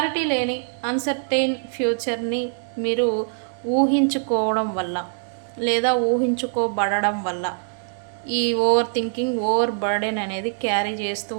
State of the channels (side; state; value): left; silent; 63 dB below the other